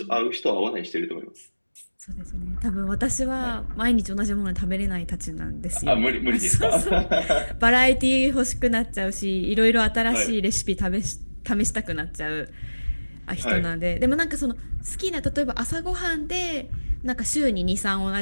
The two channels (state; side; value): inverted; both; correlation -1.00